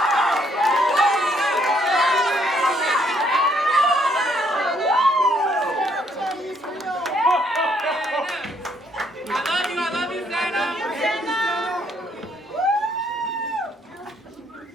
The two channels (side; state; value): both; normal; correlation 0.69